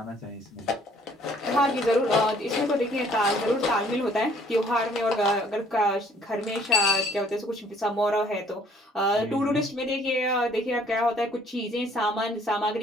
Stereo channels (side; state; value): both; normal; correlation 0.60